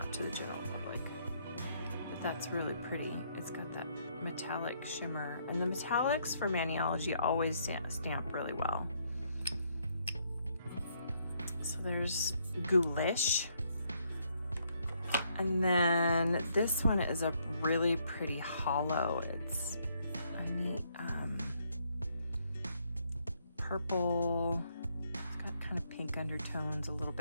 to the general public. But that's really pretty. It's got that metallic shimmer, and the metallics for Maniology always stamp really well. So there's Ghoulish. And then this one is a really pretty hollow. It's a neat purple. It's got kind of pink undertones a little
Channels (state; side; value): inverted; both; correlation -0.71